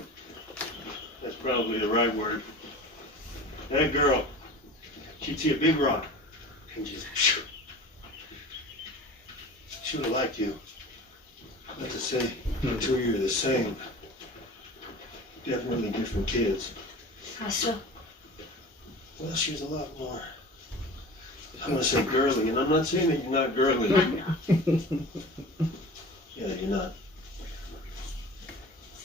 That's probably the right word. That girl, she'd see a big rock and just. She would have liked you. Not to say the two of you are the same. Definitely different kids. How so? Well, she's a lot more. I'm gonna say girly, and I'm not saying that you're not girly. Yeah, you're not.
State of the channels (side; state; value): both; normal; correlation 0.38